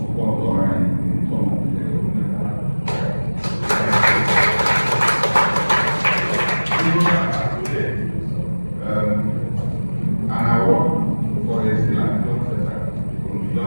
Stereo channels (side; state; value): both; inverted; correlation -1.00